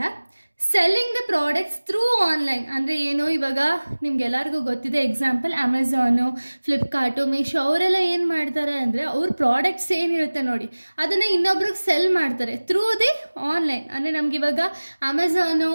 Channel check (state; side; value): inverted; both; correlation -1.00